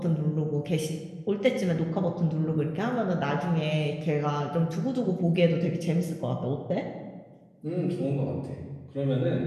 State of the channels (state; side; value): identical; both; correlation 1.00